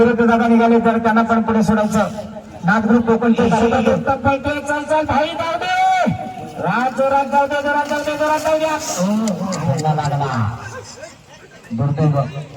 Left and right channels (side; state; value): both; identical; correlation 1.00